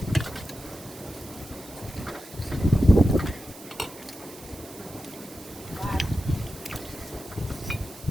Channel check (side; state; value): right; noise; hiss, 18 dB below the sound